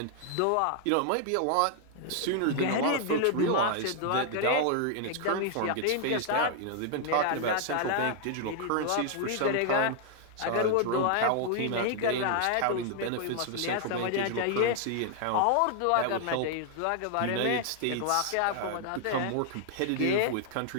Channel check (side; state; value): both; different; correlation 0.00